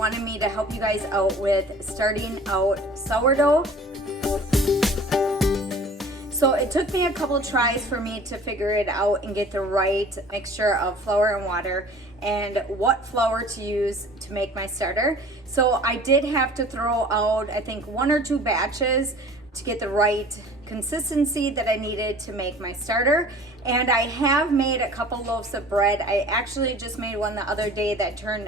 me to help you guys out with starting out sourdough. So it took me a couple tries for me to figure it out and get the right mixture of flour and water and what flour to use to make my starter. So I did have to throw out, I think, 1 or 2 batches to get the right consistency that I needed to make my starter. And I have made a couple loaves of bread. I actually just made one the other day that turned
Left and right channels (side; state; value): both; normal; correlation 0.46